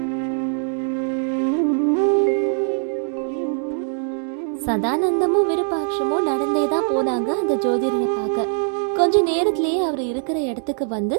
சதானந்தமும் விருப்பாட்சமும் நடந்தேதான் போனாங்க அந்த ஜோதிடரை பார்க்க. கொஞ்ச நேரத்திலேயே அவர் இருக்கிற இடத்துக்கு வந்து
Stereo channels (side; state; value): left; silent; digital silence